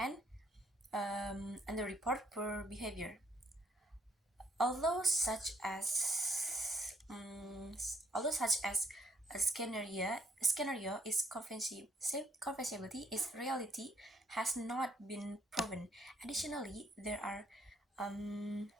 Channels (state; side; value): normal; both; correlation 0.68